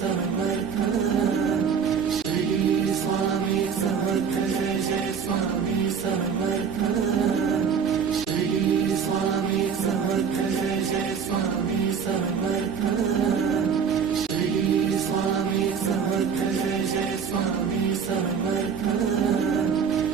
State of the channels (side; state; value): left; quieter; 6.6 dB